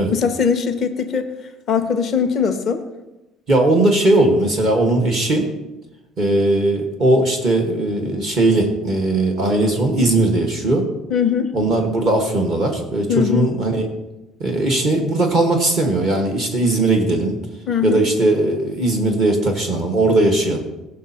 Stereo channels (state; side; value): normal; both; correlation 0.56